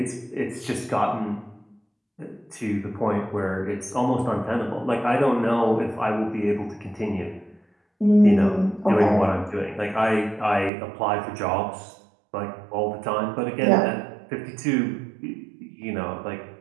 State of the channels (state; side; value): drops out; left; at 10.7 s